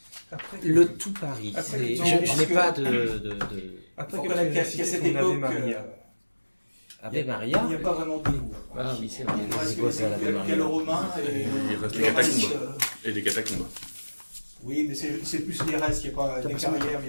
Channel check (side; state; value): both; inverted; correlation -1.00